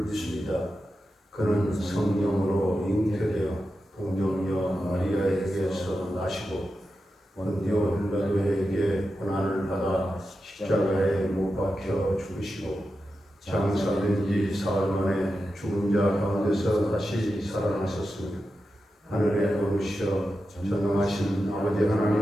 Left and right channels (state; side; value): normal; both; correlation 0.90